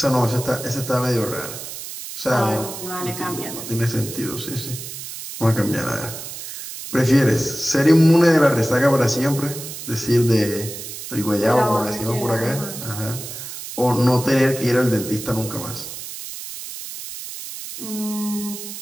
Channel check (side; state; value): right; noise; hiss, 10 dB below the sound